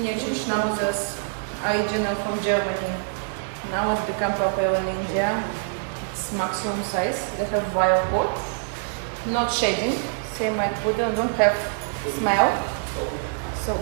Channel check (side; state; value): left; silent; digital silence